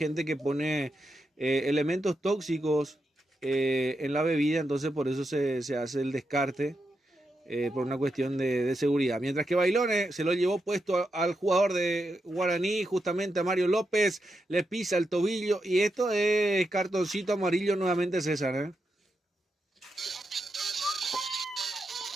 que pone elementos tóxicos en la bebida, entonces por eso se hace el descarte, por una cuestión de seguridad. Mientras que Bailone se lo llevó puesto al jugador de Guaraní, justamente a Mario López, le pisa el tobillo, y esto es cartoncito amarillo nuevamente, César,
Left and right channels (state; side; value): normal; both; correlation 0.85